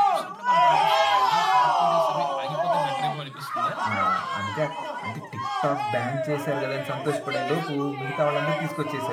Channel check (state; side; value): identical; both; correlation 1.00